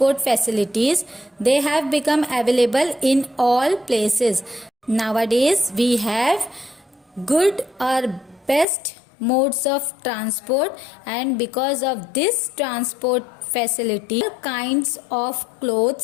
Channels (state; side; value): drops out; right; at 8.7 s